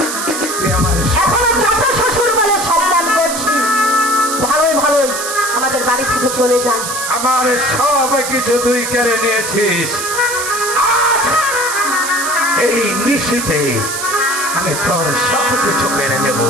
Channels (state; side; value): noise; right; hiss, 4 dB below the sound